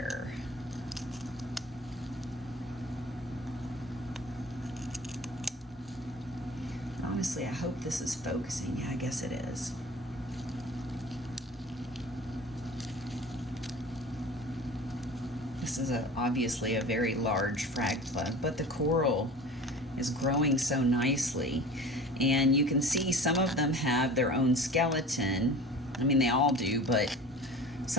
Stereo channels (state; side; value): normal; both; correlation 0.39